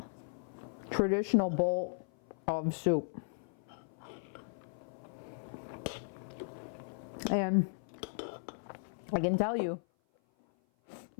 traditional bowl of soup. And I can tell you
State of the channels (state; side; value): silent; right; 53 dB below the other